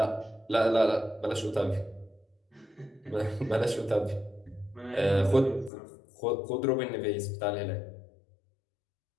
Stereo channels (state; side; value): drops out; right; at 5.7 s